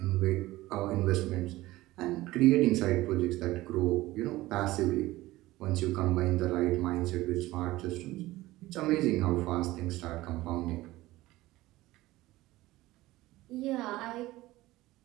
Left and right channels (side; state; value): left; quieter; 17.9 dB